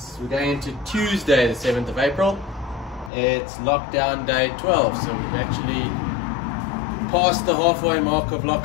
going into Tuesday the 7th of April. It's lockdown day 12, so we've actually passed the halfway mark of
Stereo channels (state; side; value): drops out; right; at 3.1 s